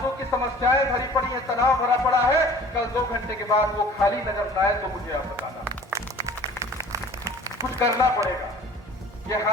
की समस्याएं भरी पड़ी है, तनाव भरा पड़ा है, कल 2 घंटे के बाद वो खाली नजर न आए तो मुझे आप बताना। कुछ करना पड़ेगा। ये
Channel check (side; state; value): both; normal; correlation 0.47